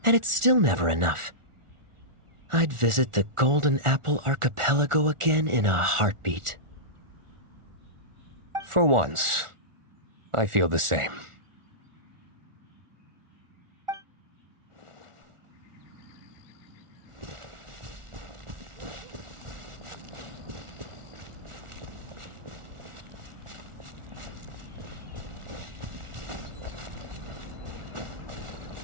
and it's still never enough. I'd visit the Golden Apple Archipelago again in a heartbeat. For once, I feel the same.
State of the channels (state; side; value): late; left; 1.4 ms